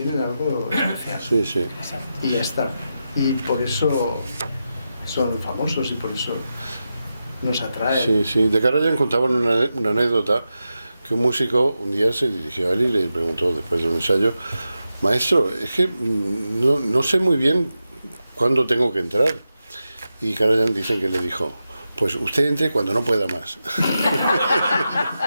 algo especial. Sí, sí. Y ya está. Y por eso son famosos y por eso nos atraen. Sí, sí. De Karajan contaban una anécdota que un músico un día se dirigió a él y le preguntó después de un ensayo, maestro, es que no sé muy bien cuándo tengo que entrar. Y Karajan dicen que le dijo, pues usted entre cuando no pueda más.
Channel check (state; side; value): inverted; both; correlation -0.90